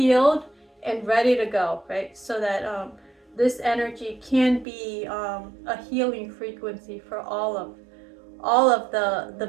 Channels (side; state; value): left; drops out; at 4.7 s